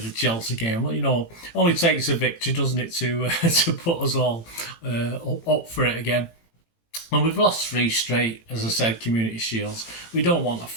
Chelsea game. Well, you know, only takes a victory, doesn't it, to put us all up for it again. And we've lost 3 straight, as I said, Community Shields. We don't want a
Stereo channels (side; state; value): right; late; 18 ms